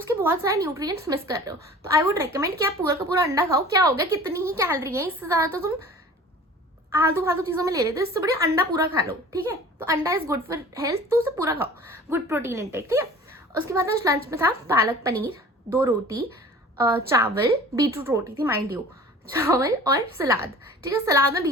बहुत सारे न्यूट्रिएंट्स मिस कर रहे हो। तो आई वुड रिकमेंड कि आप पूरा का पूरा अंडा खाओ। क्या हो गया, कितनी ही कैलोरी है, इससे ज्यादा तो तुम आलतू फालतू चीजों में ले लेते हो, इससे बढ़िया अंडा पूरा खा लो। ठीक है, तो अंडा इज गुड फॉर हेल्थ, तो उसे पूरा खाओ, गुड प्रोटीन इंटेक। ठीक है, उसके बाद आज लंच में था पालक पनीर, 2 रोटी, चावल, बीटरूट रोटी थी माइंड यू, चावल और सलाद। ठीक है, सलाद में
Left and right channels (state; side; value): normal; both; correlation 0.44